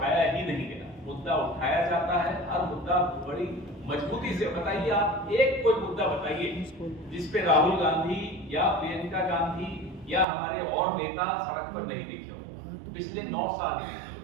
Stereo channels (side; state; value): left; drops out; at 10.2 s